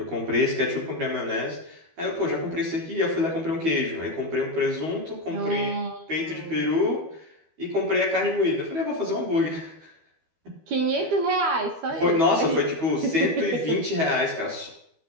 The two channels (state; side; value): late; left; 12 ms